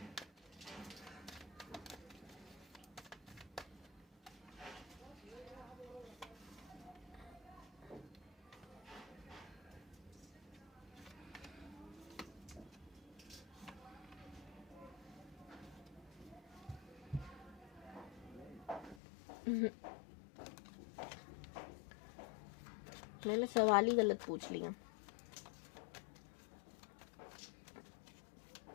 मैंने सवाल ही गलत पूछ लिया।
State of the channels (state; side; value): drops out; right; at 19.0 s